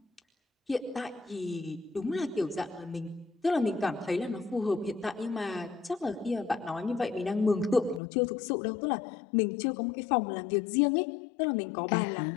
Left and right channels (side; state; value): right; drops out; at 8.0 s